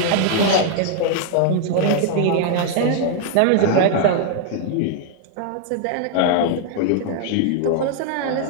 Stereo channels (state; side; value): different; both; correlation 0.00